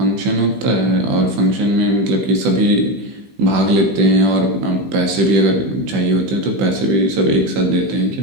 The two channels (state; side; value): late; left; 15 ms